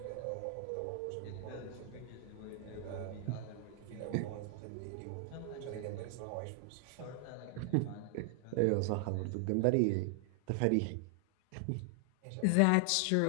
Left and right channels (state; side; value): different; both; correlation 0.00